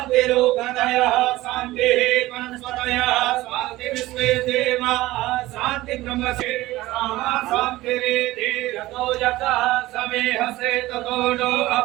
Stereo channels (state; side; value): quieter; left; 17.7 dB